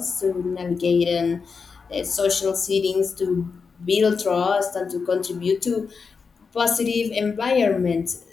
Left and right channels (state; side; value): quieter; right; 5.2 dB